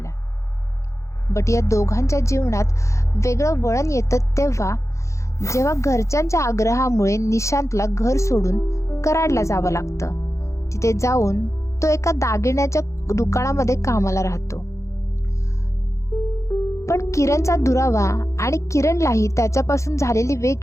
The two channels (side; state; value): right; late; 0.14 ms